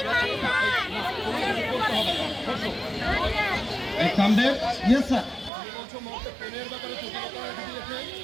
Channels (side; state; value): left; drops out; at 5.5 s